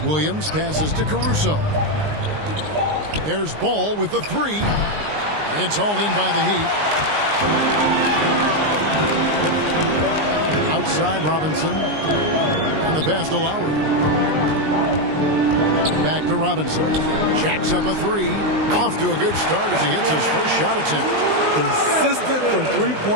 Williams passes to Caruso. There's Ball with the 3. It's hauled in by the Heat. Outside Robinson. And the pass to Lowry. Back to Robinson. Jacks up a 3. Off to a good start as he hits his first shot attempt. Consistent from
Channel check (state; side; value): late; left; 19 ms